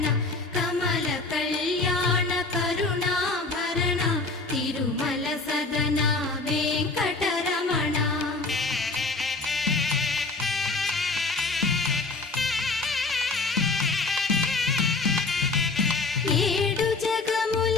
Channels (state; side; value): quieter; right; 3.7 dB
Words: కమల కళ్యాణ కరుణాభరణ తిరుమల సదన వెంకటరమణ. ఏడు జగముల